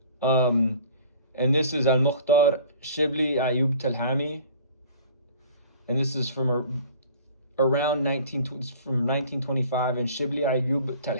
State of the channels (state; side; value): inverted; both; correlation -0.48